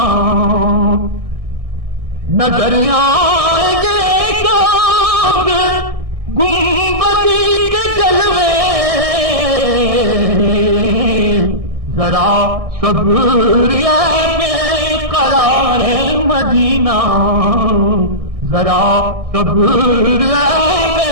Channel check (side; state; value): left; late; 1.6 ms